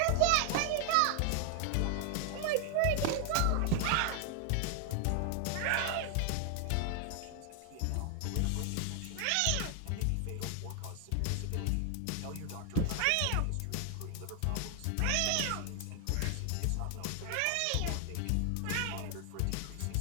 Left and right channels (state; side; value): different; both; correlation 0.00